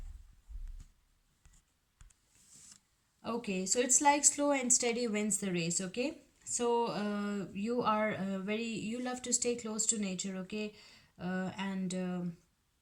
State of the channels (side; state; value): both; identical; correlation 1.00